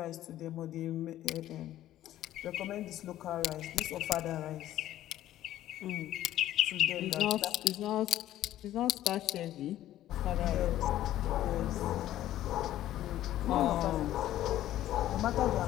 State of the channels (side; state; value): right; quieter; 13.3 dB